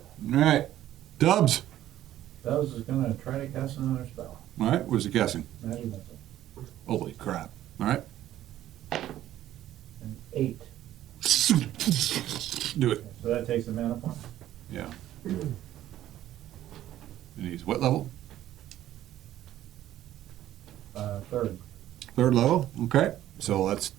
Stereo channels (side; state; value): left; quieter; 13.0 dB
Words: All right. Dubs. Dubs is gonna try to cast another spell. All right, where's he guessing? Magic missile. Holy crap. All right. An 8. Do it. So that takes a mana point. Yeah. And he's what level? Third. 3rd level? Okay. So let's,